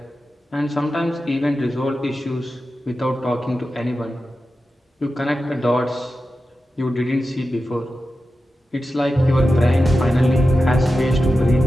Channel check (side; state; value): both; normal; correlation 0.92